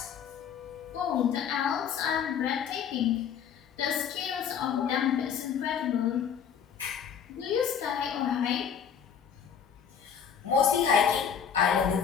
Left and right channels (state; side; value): quieter; right; 7.8 dB